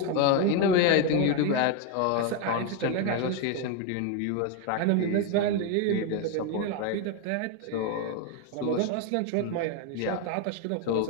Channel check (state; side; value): different; both; correlation 0.02